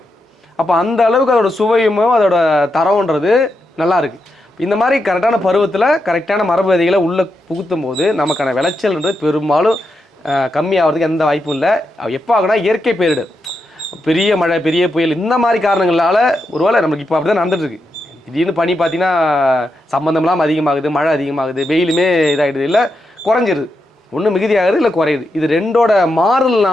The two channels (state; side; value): normal; both; correlation 0.85